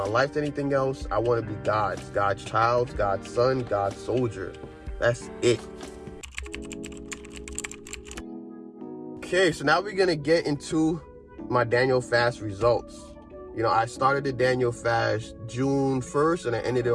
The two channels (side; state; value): both; identical; correlation 1.00